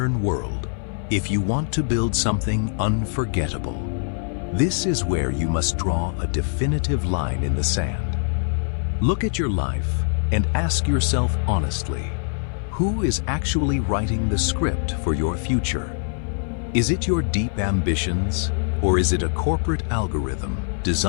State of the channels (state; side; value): silent; right; 57 dB below the other